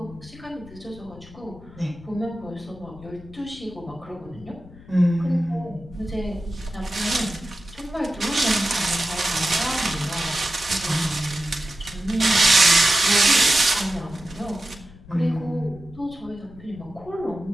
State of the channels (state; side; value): noise; left; rumble, 20 dB below the sound